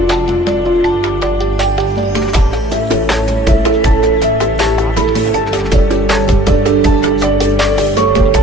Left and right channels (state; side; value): normal; both; correlation 0.55